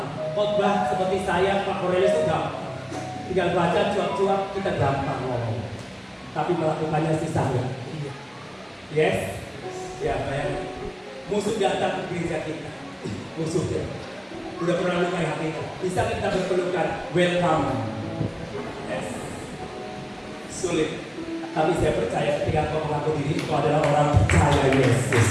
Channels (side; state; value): both; identical; correlation 1.00